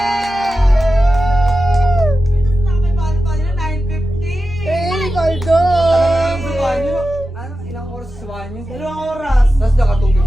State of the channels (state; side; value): normal; both; correlation 0.92